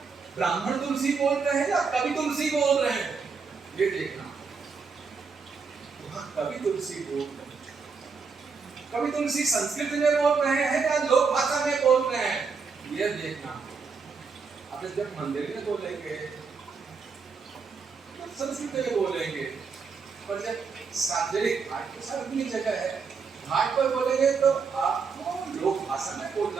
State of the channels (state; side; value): quieter; left; 5.2 dB